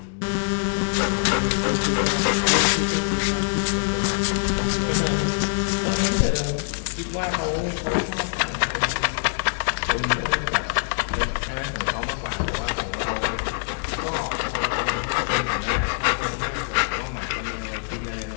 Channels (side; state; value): right; silent; 63 dB below the other